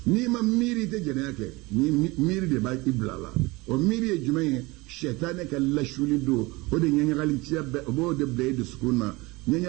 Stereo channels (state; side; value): quieter; left; 23.2 dB